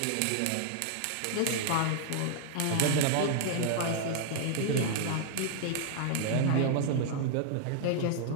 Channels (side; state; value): both; different; correlation -0.01